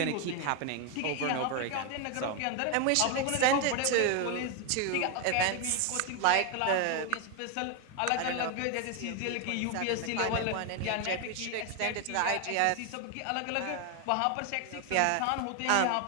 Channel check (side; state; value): both; different; correlation 0.01